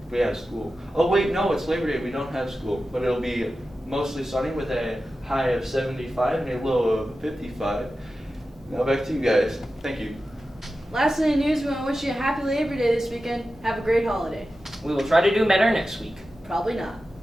we have school. Oh wait, no, it's Labor Day, we don't have school. But it'll be mostly sunny with a high of 75 and a low of 55. Now back to you guys. Thank you. Last in the news, we want to wish you a happy Labor Day this weekend. Have a great holiday. We will try to do better next week. Probably not.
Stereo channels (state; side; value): normal; both; correlation 0.93